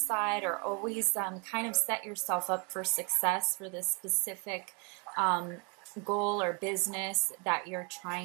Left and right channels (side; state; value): left; quieter; 34.5 dB